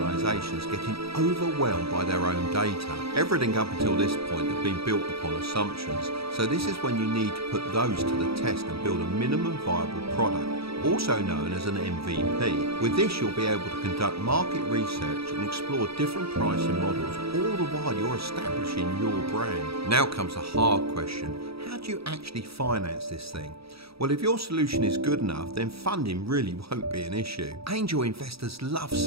getting overwhelmed by their own data. Everything up until this point had been built upon assumptions, so this is when you need to put those to the test and build a minimum viable product. also known as an MVP. With this, you'll be able to conduct market research and explore different pricing models, all the while you're establishing your brand. Now comes a hard question. How do you actually finance this thing? Well, if your solution is good enough, then funding really won't be an issue. Angel investors love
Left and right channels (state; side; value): late; left; 0.77 ms